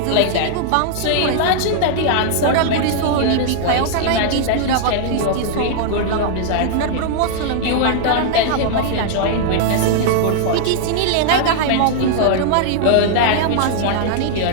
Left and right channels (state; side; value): different; both; correlation -0.01